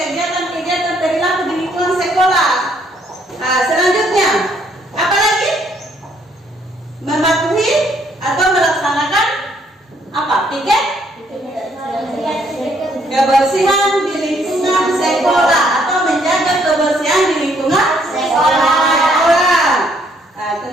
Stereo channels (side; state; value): both; normal; correlation 0.68